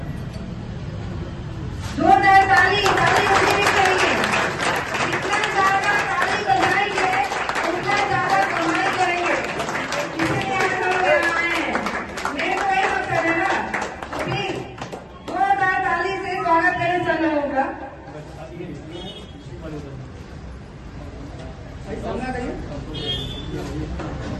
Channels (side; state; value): both; identical; correlation 1.00